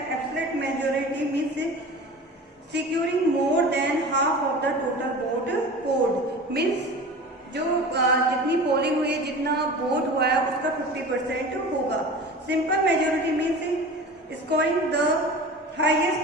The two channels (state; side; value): normal; both; correlation 0.36